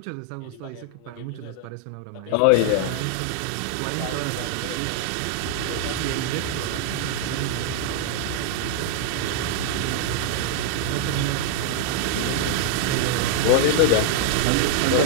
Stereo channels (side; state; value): both; different; correlation -0.01